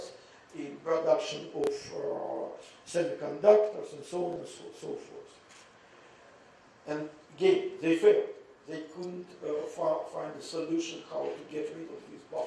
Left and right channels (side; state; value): both; identical; correlation 1.00